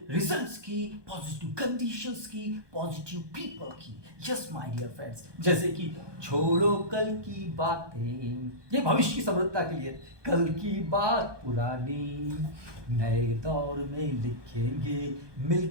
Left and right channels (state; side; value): late; left; 1.2 ms